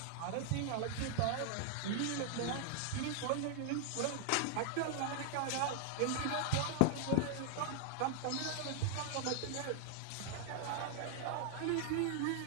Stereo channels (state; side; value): different; both; correlation 0.00